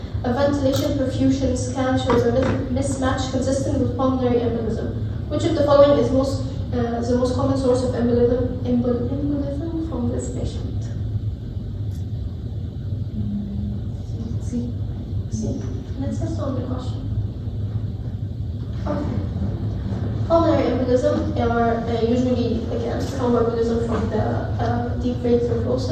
A ventilation perfusion scan shows a mismatch consistent with pulmonary embolism. Which of the following is the most common source of embolism from this patient? Let's just on the question. Okay. Pulmonary embolism are usually, again, thromboembolism from the deep vein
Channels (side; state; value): both; identical; correlation 1.00